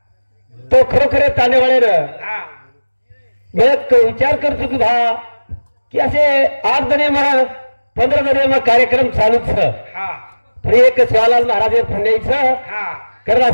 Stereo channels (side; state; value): both; inverted; correlation -1.00